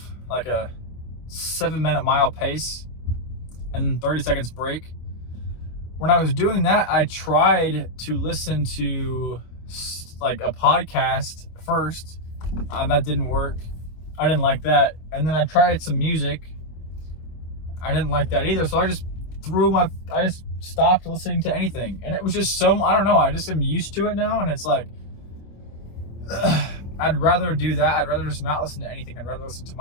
like a 7-minute mile pace and 30 seconds break. When I was doing that, I tried to listen to like a podcast first. That didn't work. I didn't like that. And then I tried some music. I didn't like that either. So I just stopped listening to anything. And it was just I don't know. I just am used to it now. And it's like, I'd rather do that. I'd rather just not listen to anything. I'd rather listen to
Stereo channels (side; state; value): right; late; 25 ms